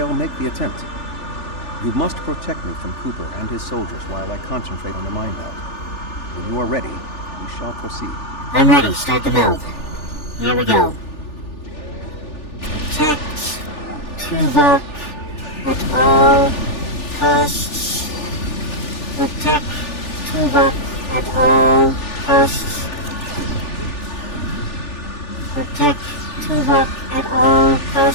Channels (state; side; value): late; right; 3.4 ms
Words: make the attempt. You must protect me from Cooper and his soldiers while I concentrate on the mine belt. When you are ready, we shall proceed. I'm ready. Start the meld. Here we go. Protect Tuvok at all costs. Protect Tuvok at all costs. Protect Tuvok at all